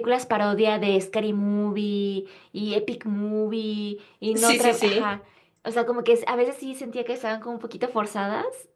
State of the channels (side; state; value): both; identical; correlation 1.00